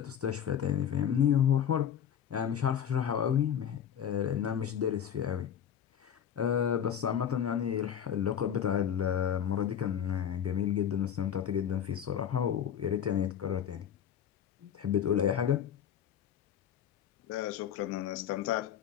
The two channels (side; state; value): right; quieter; 9.0 dB